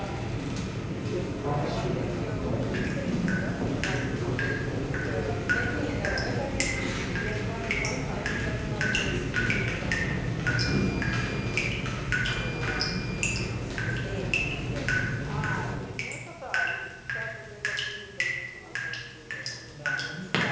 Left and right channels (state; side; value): identical; both; correlation 1.00